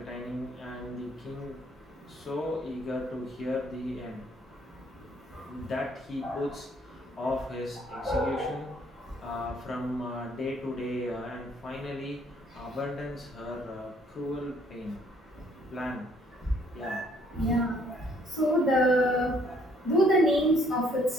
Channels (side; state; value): both; normal; correlation 0.64